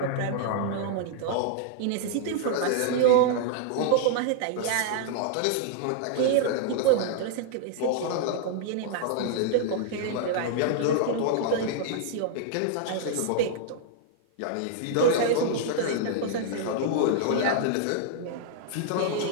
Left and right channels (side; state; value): both; different; correlation -0.01